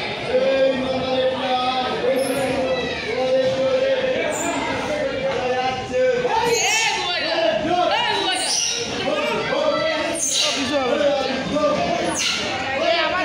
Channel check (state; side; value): identical; both; correlation 1.00